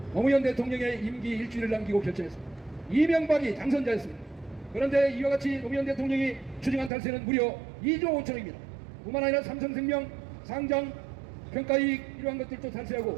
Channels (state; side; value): drops out; left; at 6.9 s